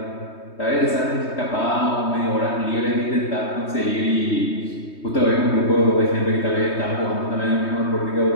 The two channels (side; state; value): right; late; 3.2 ms